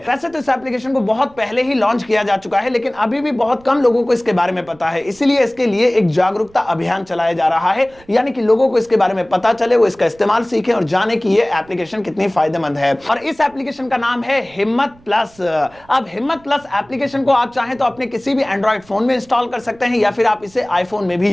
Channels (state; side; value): noise; right; rumble, 27 dB below the sound